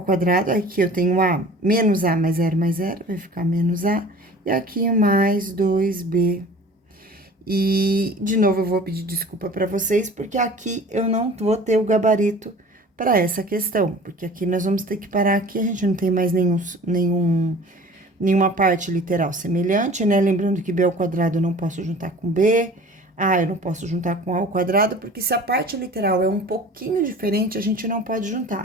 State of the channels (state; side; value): normal; both; correlation 0.44